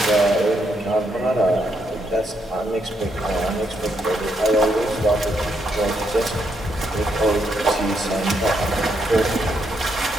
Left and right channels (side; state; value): both; normal; correlation 0.77